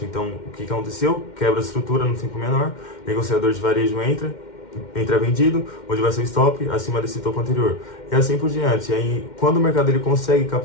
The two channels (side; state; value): right; late; 2.1 ms